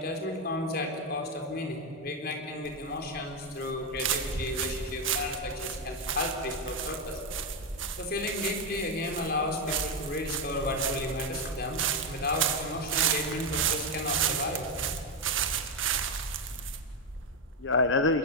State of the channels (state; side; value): normal; both; correlation 0.06